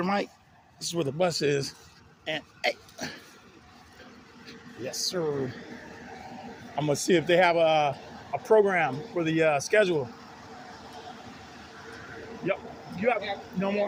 Mike? This is where the bus is. And hey, yes, sir. I'm gonna see if they have a program for the schedule. Yep. You have no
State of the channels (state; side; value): identical; both; correlation 1.00